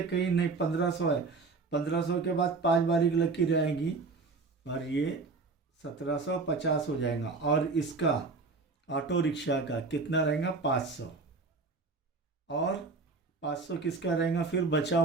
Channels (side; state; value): left; quieter; 4.1 dB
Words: कहीं नहीं, 1500 है, 1500 के बाद 5 बारीक लकीर आएंगी, और ये 1750 हो जाएगा, और इसका ऑटो रिक्शा का कितना रहेगा, 500, और 500 किसका रहेगा फिर बचा